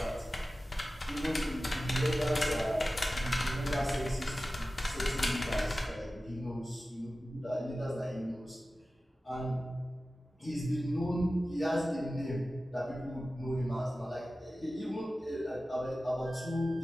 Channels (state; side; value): normal; both; correlation 0.95